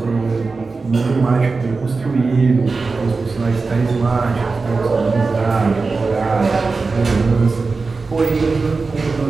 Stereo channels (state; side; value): quieter; left; 4.1 dB